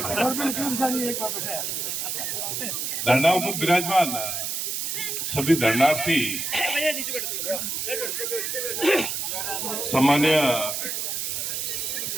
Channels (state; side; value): noise; right; hiss, 2 dB below the sound